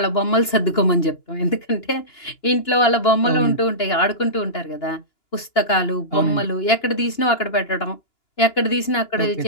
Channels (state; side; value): late; right; 2.9 ms